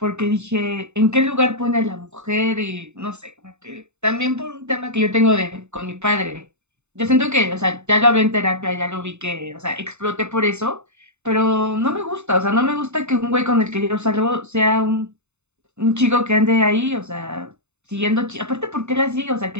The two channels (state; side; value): late; left; 0.82 ms